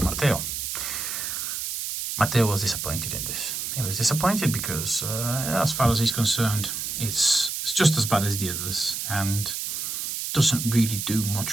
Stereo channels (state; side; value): noise; right; hiss, 4 dB below the sound